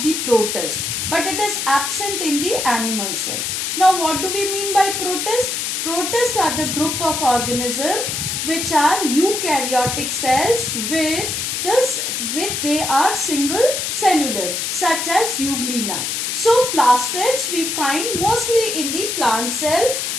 the protist, but it is absent in the animal cell. Now what do we mean by protist? Protists are the group of organisms which are eukaryotic cells they are single cellular, such as euglena. So plastids we find mostly in the plant cell,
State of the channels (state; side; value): noise; left; hiss, 2 dB below the sound